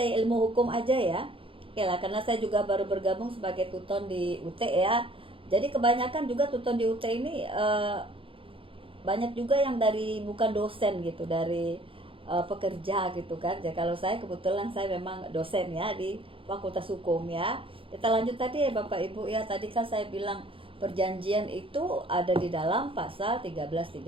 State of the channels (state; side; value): late; left; 0.26 ms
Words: ya, ilmu hukum aja ya. Oke lah, karena saya juga baru bergabung sebagai tuton di UT ya. Jadi kebanyakan juga tuton di UT ini banyak juga yang dari bukan dosen gitu, dari pekerja gitu kan. Ya kalau saya kebetulan saya memang dosen ya di Fakultas Hukum ya. Kita lanjut tadi ya Bapak Ibu ya. Tadi kan saya bilang perjanjian itu ada di dalam pasal